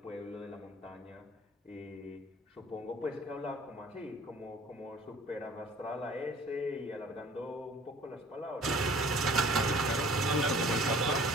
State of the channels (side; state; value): both; normal; correlation 0.50